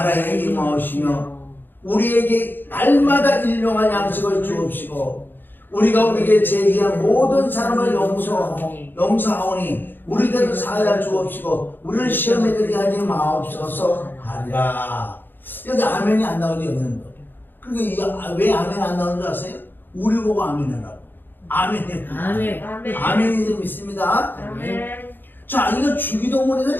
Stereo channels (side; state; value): right; late; 0.094 ms